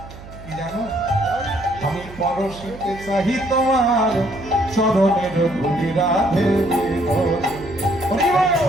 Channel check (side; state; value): right; noise; hum, 16 dB below the sound